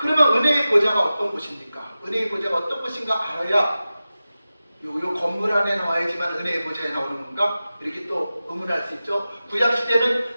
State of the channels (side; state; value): both; inverted; correlation -0.95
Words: 은혜의 보좌가 어떤 곳입니까? 은혜의 보좌가 어떤 곳인가 알아야 요 건물 안에 나와야지만 은혜의 보좌에 나오는 건가? 이렇게 또 의문할 수 있죠. 구약시대는